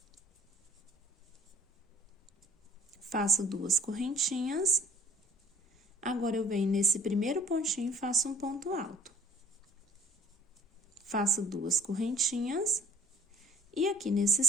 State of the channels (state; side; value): normal; both; correlation 0.52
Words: Faço 2 correntinhas, agora eu venho nesse primeiro pontinho e faço um ponto alto. Faço 2 correntinhas, e aqui nesse